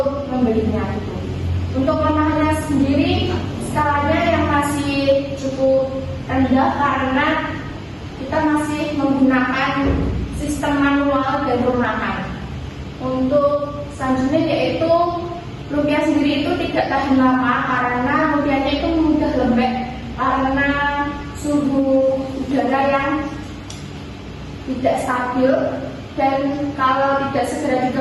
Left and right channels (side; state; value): both; identical; correlation 1.00